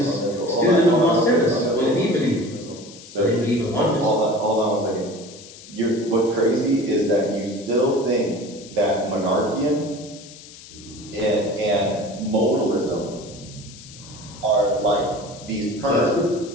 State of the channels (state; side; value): noise; left; hiss, 18 dB below the sound